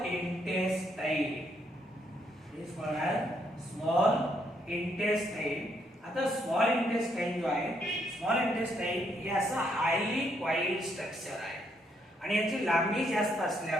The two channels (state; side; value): normal; both; correlation 0.74